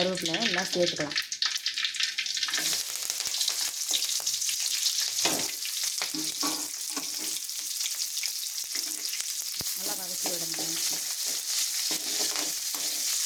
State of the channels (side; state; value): both; identical; correlation 1.00